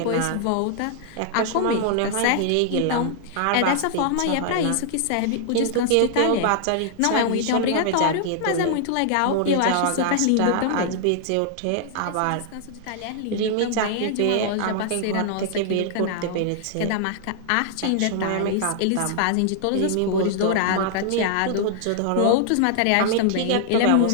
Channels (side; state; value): both; different; correlation -0.01